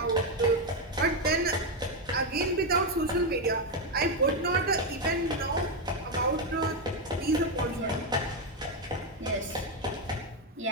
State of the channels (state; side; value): normal; both; correlation 0.06